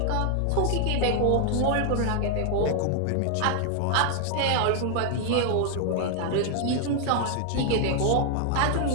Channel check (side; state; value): both; different; correlation 0.00